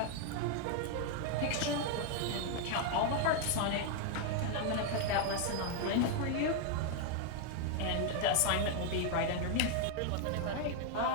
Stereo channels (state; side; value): different; both; correlation 0.00